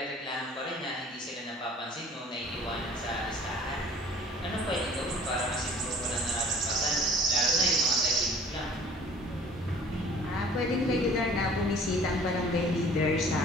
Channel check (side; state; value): both; normal; correlation 0.50